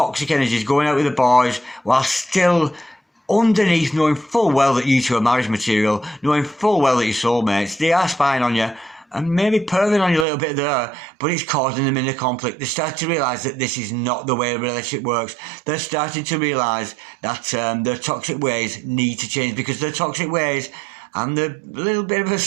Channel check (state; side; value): drops out; left; at 10.2 s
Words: energies going out with the boys while still underneath knowing full well that you two are marriage material, knowing full well that you're soulmates. They are spying on you and maybe perving on you a little bit there, but it's causing them inner conflict. They start to realise that this is not the way a relationship works. They're starting to realise that their toxic ways need to change, because their toxic ways and the little bit of a